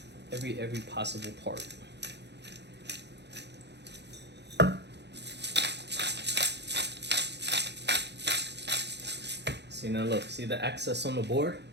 possible part. See, now look, see the excess on the board?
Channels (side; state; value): left; late; 0.50 ms